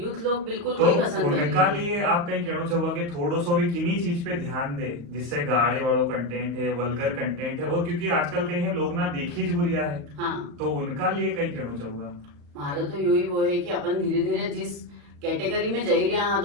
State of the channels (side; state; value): left; late; 35 ms